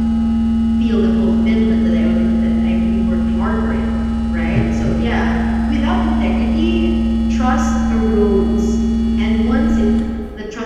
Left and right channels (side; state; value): both; identical; correlation 1.00